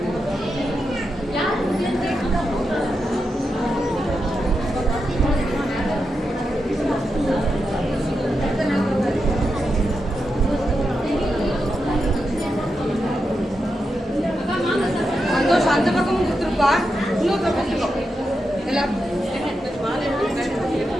யார் சந்தோஷம் அந்த பக்கமும் கொடுத்துருப்பா. இன்னொரு பக்கத்துக்கோ எல்லாம்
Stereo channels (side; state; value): both; normal; correlation 0.87